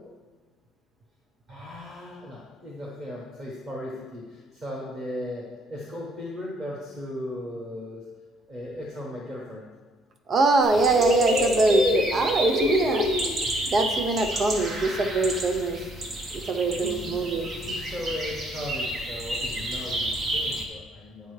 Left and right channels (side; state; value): both; normal; correlation 0.66